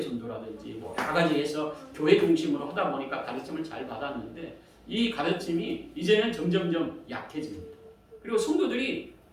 전도라든지 뭐 여러 가지 해서 교회 중심으로 하다 보니까 가르침을 잘 받았는데 이 가르침이 이제는 점점점 약해집니다. 그리고 성도들이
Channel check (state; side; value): identical; both; correlation 1.00